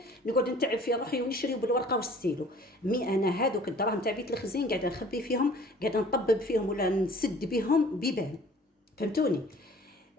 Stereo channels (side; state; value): both; normal; correlation 0.51